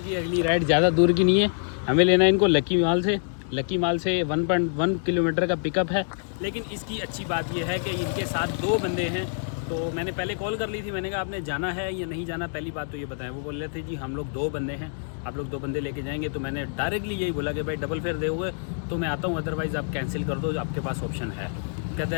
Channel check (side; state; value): right; silent; digital silence